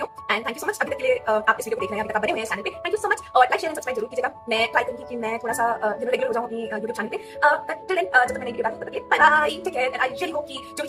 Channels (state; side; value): identical; both; correlation 1.00